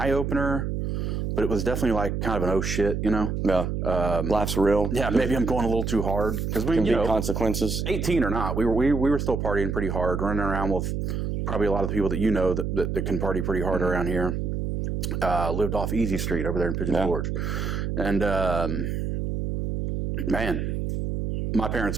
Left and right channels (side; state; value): right; noise; hum, 2 dB below the sound